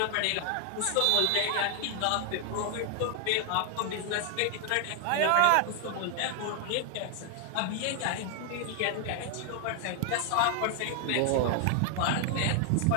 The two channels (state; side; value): different; both; correlation 0.00